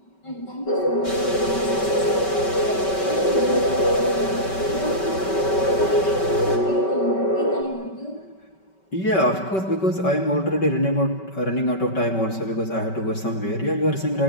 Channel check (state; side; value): late; right; 5.2 ms